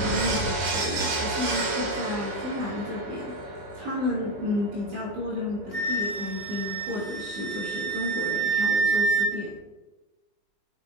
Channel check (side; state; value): left; late; 20 ms